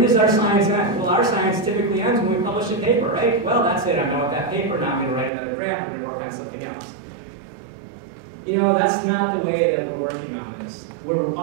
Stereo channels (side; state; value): left; drops out; at 5.3 s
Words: does our science end? Well, our science typically ends when we publish a paper, right? Well, that's it. I'm done with that paper. Now I'm going to write another grant. I'm going to work on something else. That's not the way that we're working on this. We're